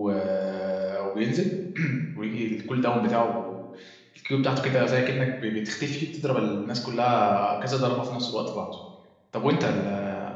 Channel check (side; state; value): both; identical; correlation 1.00